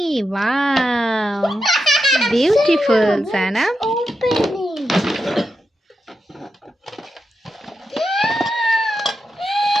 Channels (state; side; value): normal; both; correlation 0.87